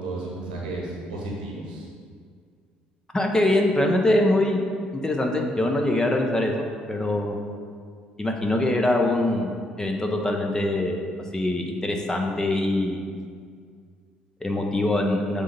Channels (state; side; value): normal; both; correlation 0.78